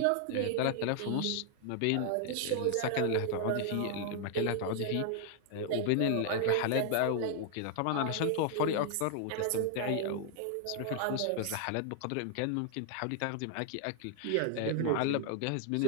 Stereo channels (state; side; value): different; both; correlation 0.00